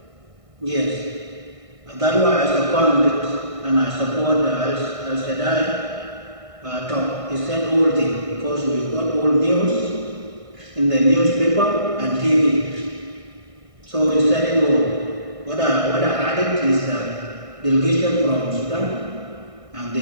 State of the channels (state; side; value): late; left; 1.6 ms